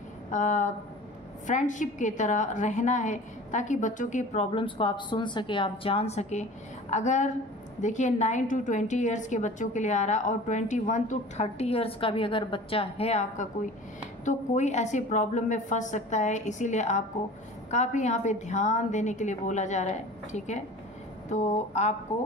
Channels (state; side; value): normal; both; correlation 0.41